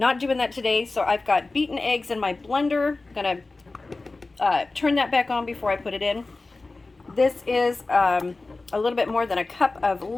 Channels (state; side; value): quieter; right; 3.4 dB